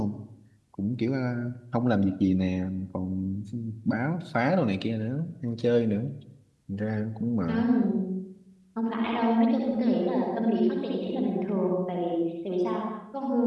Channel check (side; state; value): both; identical; correlation 1.00